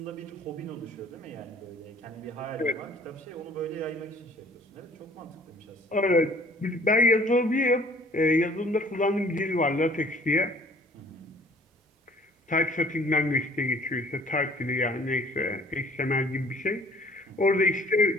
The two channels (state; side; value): normal; both; correlation 0.54